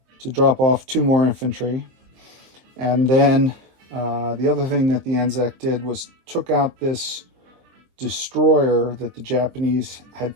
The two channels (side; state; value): left; late; 23 ms